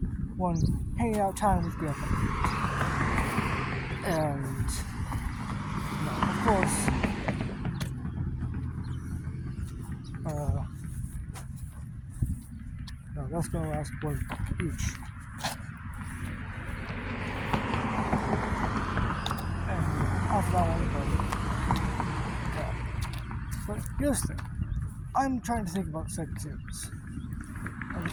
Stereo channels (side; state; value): both; identical; correlation 1.00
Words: one hanging out time with grandpa, and of course, that's going to last one book each. And after that one, but here's the thing. I'm trying to think about the second series. And the